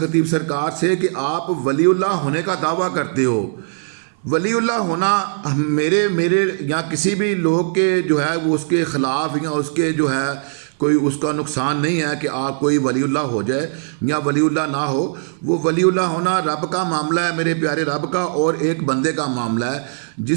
सरकार से कि आप वलीउल्लाह होने का दावा करते हो। वलीउल्लाह होना मेरे या किसी भी लोग के जो है वो उसके ख़िलाफ़ या उसके जो है कोई उसका नुकसान नहीं है कि आप कोई वलीउल्लाह हो जाए या वलीउल्लाह ना हो। वो वलीउल्लाह होना रब का मामला है, मेरे प्यारे रब का, और एक बंदे का मामला है।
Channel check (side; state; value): left; silent; 60 dB below the other